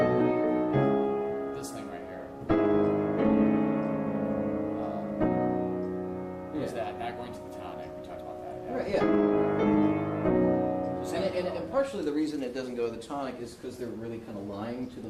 This thing right here. Is that not going to the tonic? We talked about that. Yeah. Right, yeah. And partially the reason it doesn't go to the tonic is because they're really kind of lying to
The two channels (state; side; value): identical; both; correlation 1.00